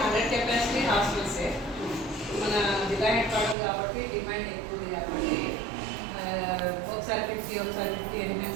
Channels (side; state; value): left; drops out; at 3.6 s